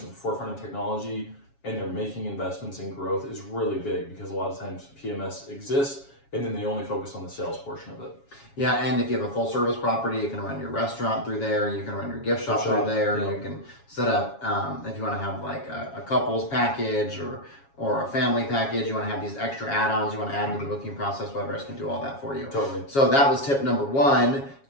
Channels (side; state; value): right; late; 7.3 ms